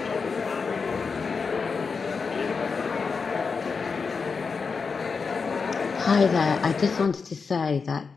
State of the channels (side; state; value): right; quieter; 5.1 dB